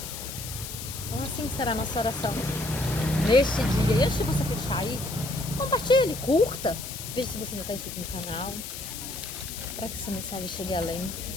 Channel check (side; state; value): left; noise; hiss, 8 dB below the sound